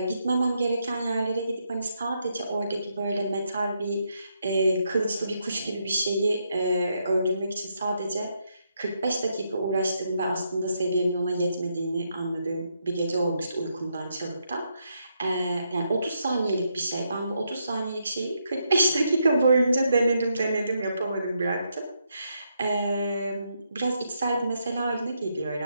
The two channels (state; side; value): inverted; both; correlation -0.79